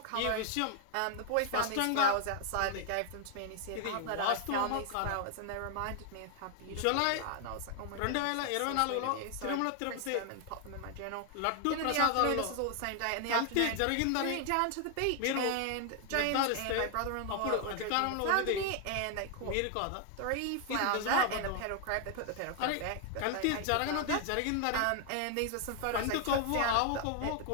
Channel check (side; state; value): both; different; correlation 0.00